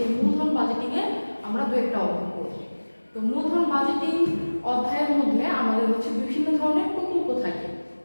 মূলধন বাজেটিং এ আমরা দু একটা অঙ্ক করব। তো মূলধন বাজেটিং অধ্যায়ের মধ্যে আমাদের হচ্ছে বিভিন্ন ধরনের প্রকল্প থাকে।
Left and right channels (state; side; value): inverted; both; correlation -1.00